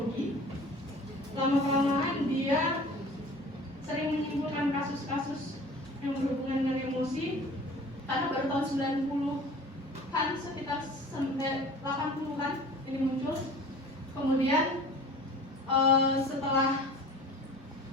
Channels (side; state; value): both; normal; correlation 0.43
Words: Lama-kelamaan dia menimbulkan kasus-kasus yang berhubungan dengan emosi karena baru tahun 90-an, sekitar 80-an ini muncul. Kemudian setelah